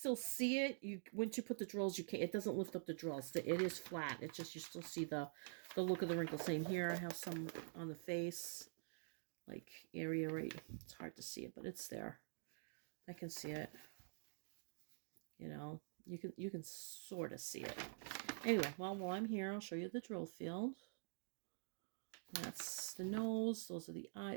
see it, once you put the drills, it doesn't lift up the drills. It is flat. It's just you still see the look of the wrinkle. Same here. I have some on the face, like area right. It's hard to see it, but it's there. I can see it. You know, you can sort of see it. Anyway, well, while I'm here, I'll show you the drill field. That's the nose. Those are the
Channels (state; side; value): silent; left; digital silence